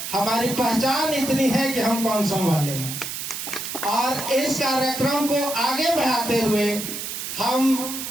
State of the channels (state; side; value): noise; right; hiss, 6 dB below the sound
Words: हमारी पहचान इतनी है कि हम कौन सो वाले हैं। और इस कार्यक्रम को आगे बढ़ाते हुए हम